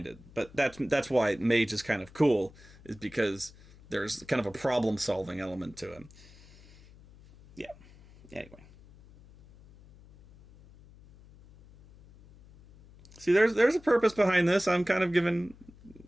it. But that's why Mage is kind of cool, is because there's kind of a problem-solving element to it. Yeah. Anyway. See, there's a purpose behind this. I'm kind of giving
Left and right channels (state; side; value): noise; left; hum, 23 dB below the sound